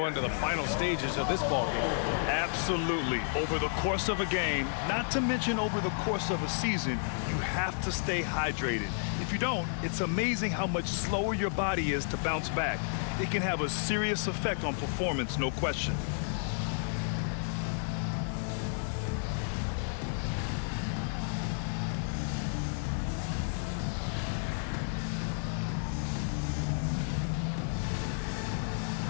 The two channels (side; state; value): right; silent; 57 dB below the other